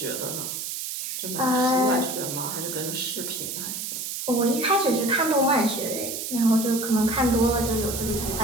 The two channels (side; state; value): right; noise; hiss, 5 dB below the sound